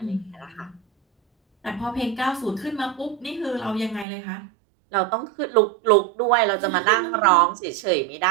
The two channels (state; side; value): drops out; left; at 4.0 s